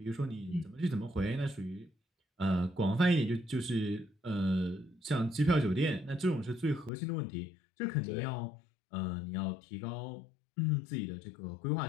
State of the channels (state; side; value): drops out; right; at 6.9 s